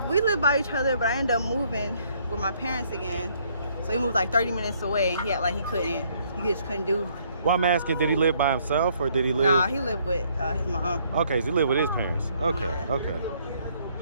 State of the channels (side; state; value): both; inverted; correlation -0.66